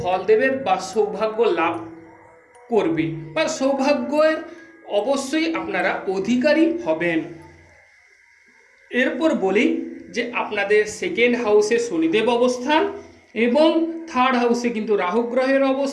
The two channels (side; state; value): both; identical; correlation 1.00